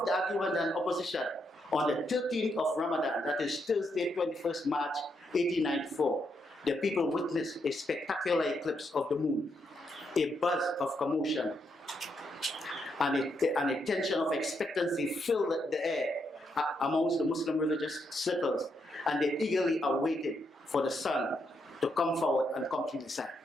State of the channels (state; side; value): normal; both; correlation 0.79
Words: the argument and opposition, on the 13th of Ramadan, that is Thursday, 21st March 1894, the people witnessed a spectacular eclipse of the moon, a buzz of commotion, and a tension of expectancy filled the air amongst the Muslim religious circles, and they eagerly awaited for the sun to come forward and complete the sign.